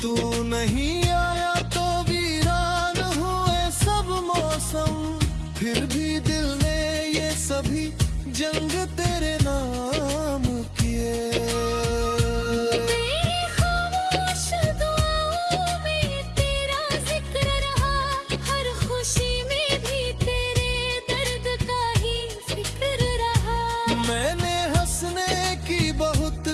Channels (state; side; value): identical; both; correlation 1.00